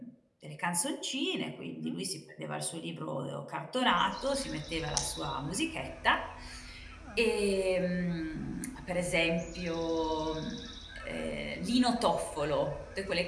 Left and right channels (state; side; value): identical; both; correlation 1.00